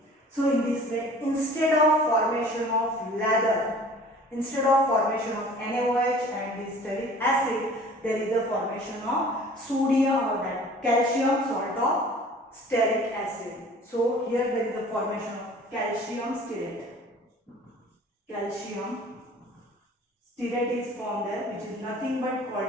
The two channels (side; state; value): both; normal; correlation 0.47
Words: So in this way, instead of formation of lather, instead of formation of NaOH and this stearic acid, there is a formation of sodium or that calcium salt of stearic acid. So here there is a formation of calcium stearate. Calcium stearate is formed there, which is nothing but